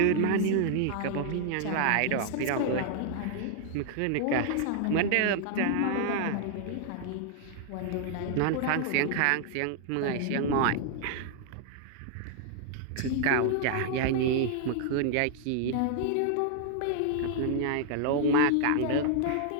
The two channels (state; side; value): different; both; correlation 0.00